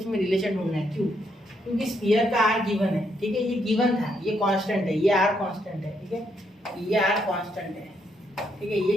में रिलेशन ढूंढना है। क्यों, क्योंकि स्फीयर का आर गिवन है। ठीक है, ये गिवन था, ये कांस्टेंट है, ये आर कांस्टेंट है। ठीक है, ये आर कांस्टेंट है। ठीक है, ये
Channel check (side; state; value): both; normal; correlation 0.75